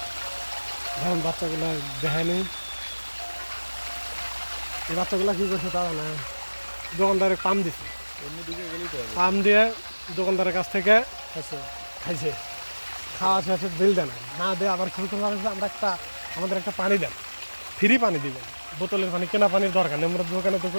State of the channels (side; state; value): both; inverted; correlation -1.00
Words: এখন বাচ্চাগুলা দেখায়নি, এই বাচ্চাগুলা কি করছে তা না, দোকানদারে পাম দিছে, অন্যদিকে গেলেই তো হবে। পাম দিয়ে দোকানদারের কাছ থেকে আছে খাইছে, খাওয়া শেষে বিল দেন না দিয়ে আবার শুরু করলাম যে আমাদের একটা পানি দেন, ফ্রি পানি দিবেন, বোতলের পানি, কেনা পানির দরকার নেই, আমরা দোকানে তো